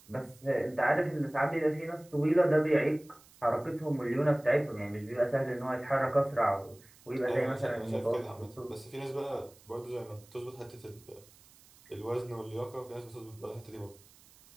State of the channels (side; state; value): right; noise; hiss, 25 dB below the sound